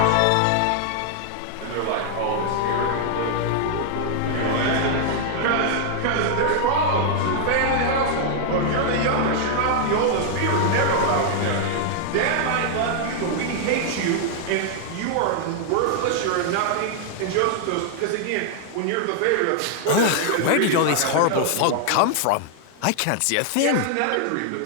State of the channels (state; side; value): different; both; correlation 0.00